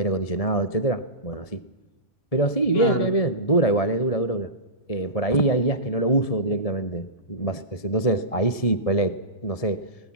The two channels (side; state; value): right; late; 1.7 ms